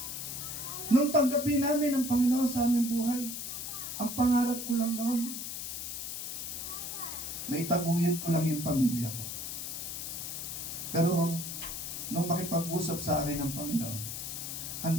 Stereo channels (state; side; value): noise; left; hiss, 5 dB below the sound